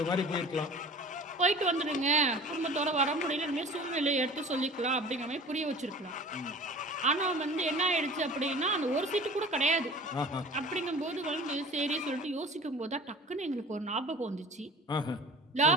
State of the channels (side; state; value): both; normal; correlation 0.42